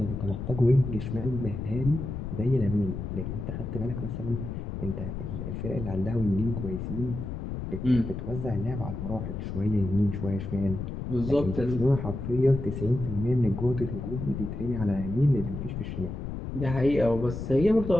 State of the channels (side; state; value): left; noise; rumble, 6 dB below the sound